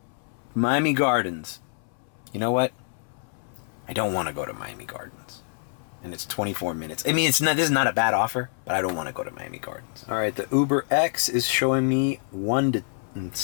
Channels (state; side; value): silent; right; 61 dB below the other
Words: Miami Gardens. You know what? I don't want to go to Miami Gardens. And it's 24 minutes. I mean, this is not a bad offer, but I don't want to go to Miami Gardens. All right, the Uber X is showing me